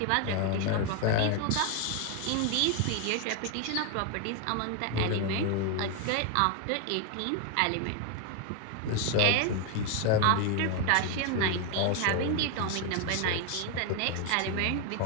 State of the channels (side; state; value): both; different; correlation 0.01